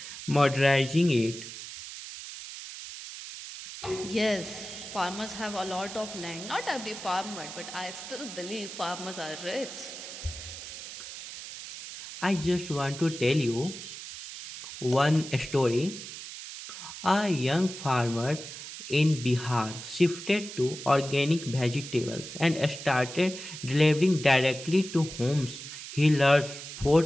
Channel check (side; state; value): right; noise; hiss, 11 dB below the sound